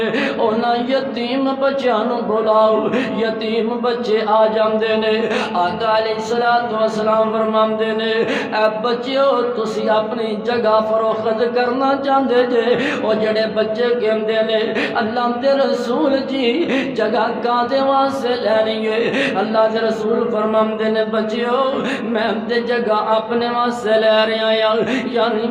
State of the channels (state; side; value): identical; both; correlation 1.00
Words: انہاں یتیم بچیاں بلاؤ، یتیم بچے آ جاندے نے۔ آقا علیہ السلام فرماندے نے اے بچیو تسی اپنی جگہ فروخت کرنا چاہندے جے، اور جڑے بچے کے نے اللہ دے رسول جی جگہ کاندے واسے لینی ہے۔ اللہ دے رسول فرماندے نے بچیو میں دے جگہ اپنے واسے لے رہا ہوں، یعنی